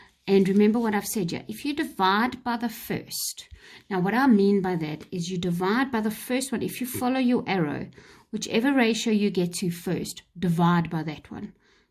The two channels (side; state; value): both; identical; correlation 1.00